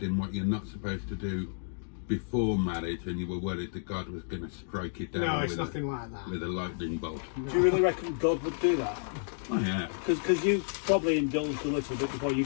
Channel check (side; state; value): right; silent; digital silence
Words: in what you're not supposed to do before marriage and you were worried that God was going to strike you down No, it's with, nothing like that. with a lightning bolt. Do you really reckon God would do that? Oh, yeah. Because you probably indulged a little bit before you